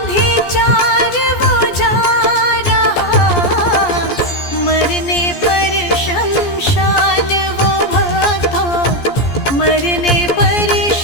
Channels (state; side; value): late; right; 14 ms